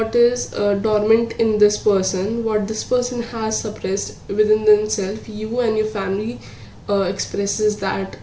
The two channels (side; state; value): both; identical; correlation 1.00